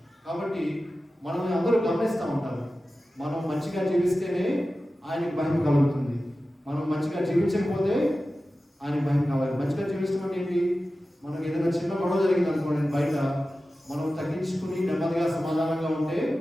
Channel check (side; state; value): both; normal; correlation 0.94